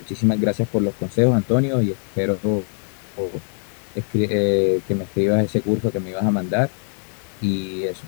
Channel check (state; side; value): silent; right; 57 dB below the other